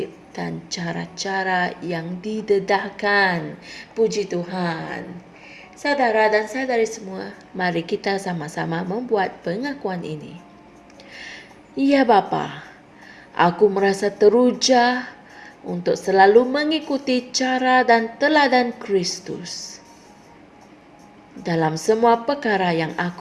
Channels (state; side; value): identical; both; correlation 1.00